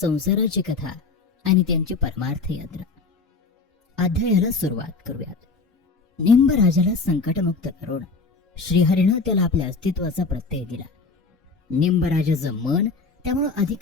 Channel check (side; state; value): right; quieter; 4.1 dB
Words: कथा आणि त्यांची परमार्थ यात्रा. अध्यायाला सुरुवात करूयात. निंबराजाला संकटमुक्त करून श्रीहरीनं त्याला आपल्या अस्तित्वाचा प्रत्यय दिला. निंबराजाचं मन त्यामुळे